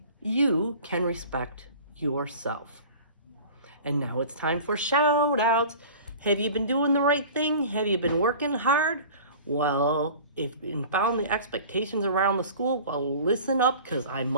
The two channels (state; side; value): inverted; both; correlation -0.41